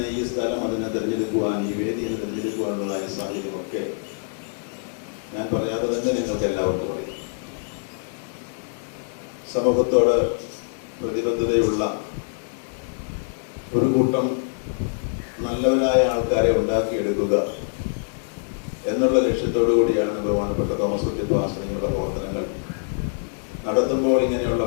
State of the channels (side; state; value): right; silent; digital silence